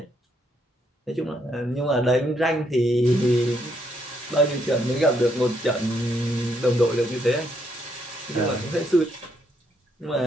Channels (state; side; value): normal; both; correlation 0.74